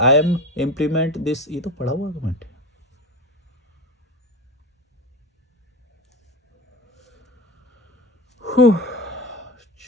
am implement this. ये तो पढ़ा हुआ कमेंट है।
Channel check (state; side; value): normal; both; correlation 0.26